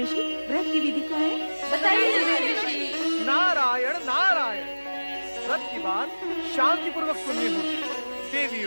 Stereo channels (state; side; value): inverted; both; correlation -1.00